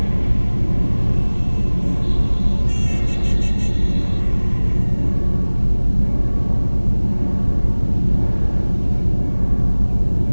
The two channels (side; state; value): both; inverted; correlation -1.00